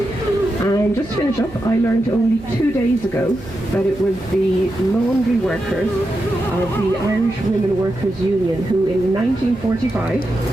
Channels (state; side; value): noise; right; hum, 20 dB below the sound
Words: And just to finish up, I learned only 2 days ago that it was the laundry workers of the Irish Women Workers Union who in 1945,